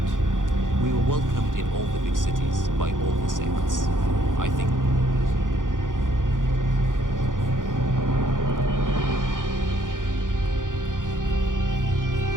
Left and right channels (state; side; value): late; left; 0.88 ms